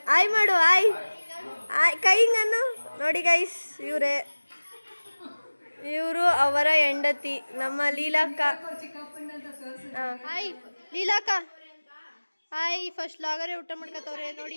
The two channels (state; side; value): inverted; both; correlation -1.00